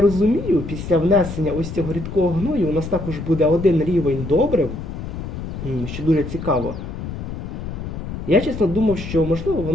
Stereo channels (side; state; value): left; noise; rumble, 7 dB below the sound